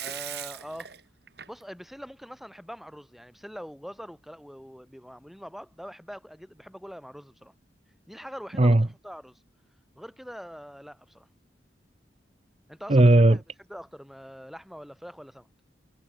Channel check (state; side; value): normal; both; correlation 0.84